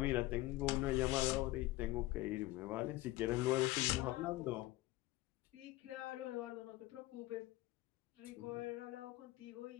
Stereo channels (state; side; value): quieter; right; 18.4 dB